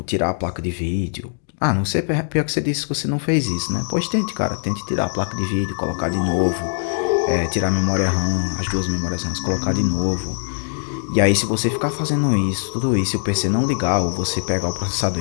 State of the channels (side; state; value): right; silent; 65 dB below the other